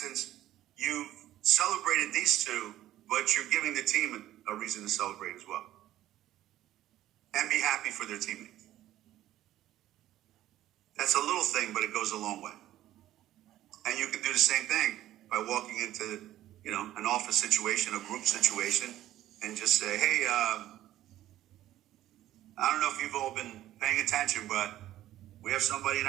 you've celebrated these two, but you're giving the team a reason to celebrate as well. And be happy for their teammates. That's a little thing, but it goes a long way. And you can do the same thing by walking into, an office situation, a group situation, and just say, hey, I don't know if you've all been paying attention, but we have somebody in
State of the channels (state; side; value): quieter; left; 13.7 dB